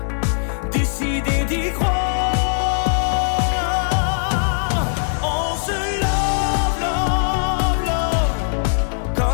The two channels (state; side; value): silent; right; digital silence